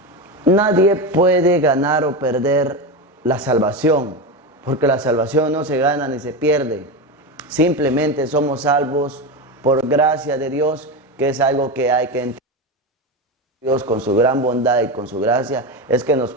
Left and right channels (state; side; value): normal; both; correlation 0.18